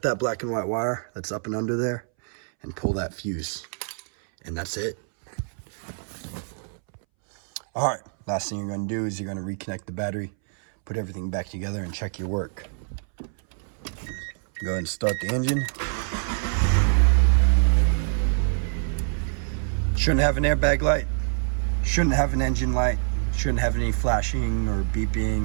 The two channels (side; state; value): left; silent; 61 dB below the other